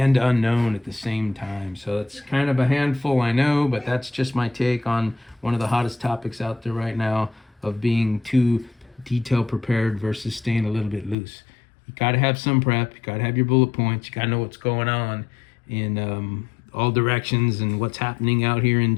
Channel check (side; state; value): right; drops out; at 11.2 s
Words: unknown at the same time. So it's kind of a handful, I know, but that's just my take on one of the hottest topics out there right now, of being too detail prepared versus staying a little bit loose. You got to have some prep. You got to have your bullet points. You got to know what's going on in all directions, and what's happening out here in